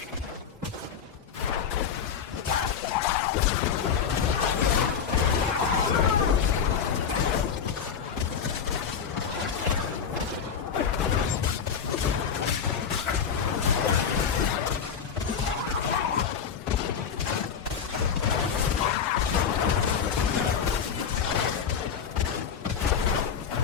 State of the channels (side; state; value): right; quieter; 7.1 dB